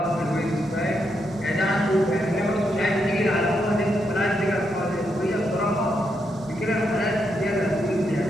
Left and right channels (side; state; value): right; noise; hum, 25 dB below the sound